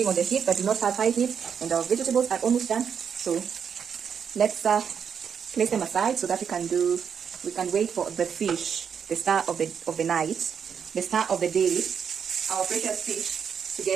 on the heat, but do not have high heat. And our vegetables are almost done. So let's place them aside so that we can wait for the fish, the star of the night, the star of the day, our precious fish, to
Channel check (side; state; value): left; quieter; 7.2 dB